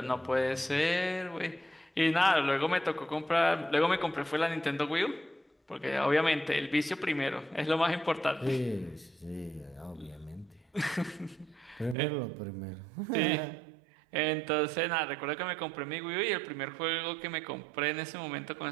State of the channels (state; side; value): drops out; left; at 12.0 s